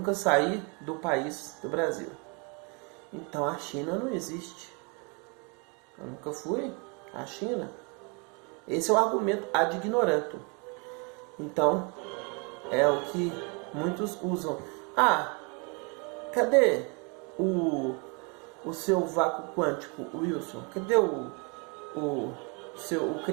saí do país do Brasil. Então a China não existe. Eu nunca fui à China. Esse é o argumento ad ignorantum. Então, é o que muitos usam. Cadê o seu vácuo quântico, Wilson? Cadê o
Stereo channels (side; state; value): left; quieter; 33.3 dB